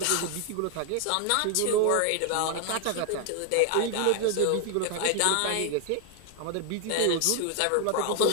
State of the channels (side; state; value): both; different; correlation 0.00